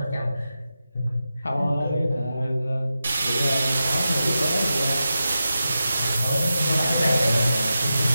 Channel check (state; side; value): inverted; both; correlation -0.90